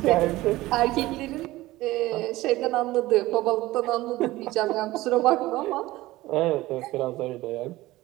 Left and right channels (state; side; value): quieter; left; 17.9 dB